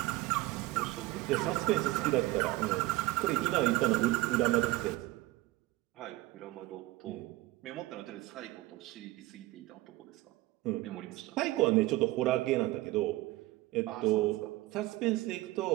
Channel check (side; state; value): left; quieter; 19.0 dB